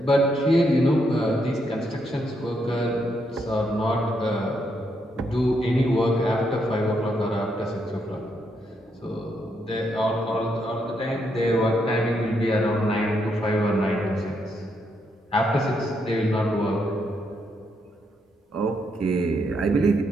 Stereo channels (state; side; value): normal; both; correlation 0.78